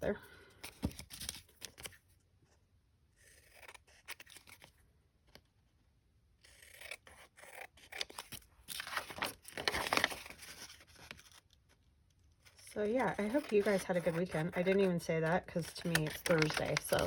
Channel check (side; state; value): both; identical; correlation 1.00